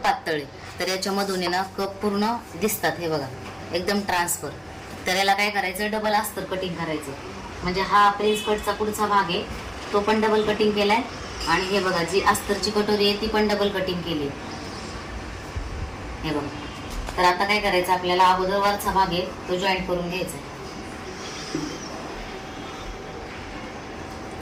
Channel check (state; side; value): identical; both; correlation 1.00